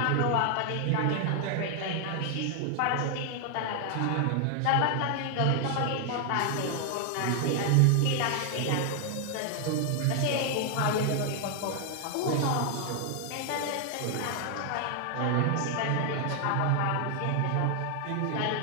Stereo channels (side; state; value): both; different; correlation 0.00